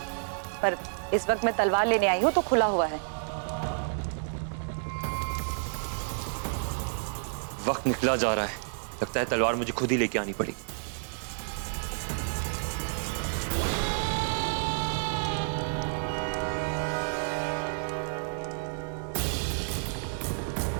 पर इस वक्त मैं तलवार लेने आई हूं तो खुला हुआ है। वक्त निकला जा रहा है, लगता है तलवार मुझे खुद ही लेके आनी पड़ेगी।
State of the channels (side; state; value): left; silent; 58 dB below the other